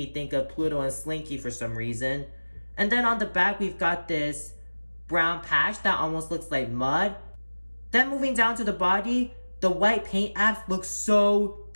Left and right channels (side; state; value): both; inverted; correlation -1.00